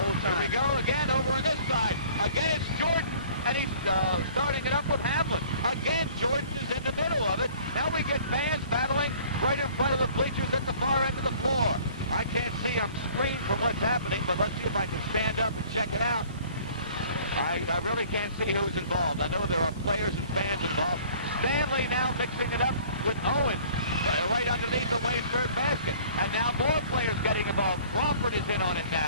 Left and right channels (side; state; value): both; inverted; correlation -0.52